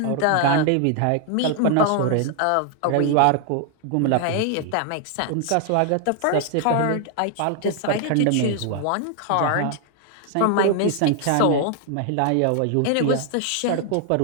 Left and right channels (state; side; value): different; both; correlation 0.00